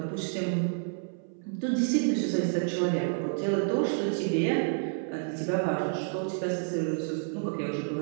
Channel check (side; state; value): left; silent; 58 dB below the other